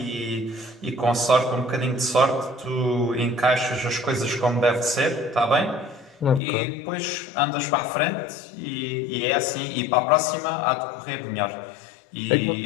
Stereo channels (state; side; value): drops out; right; at 6.4 s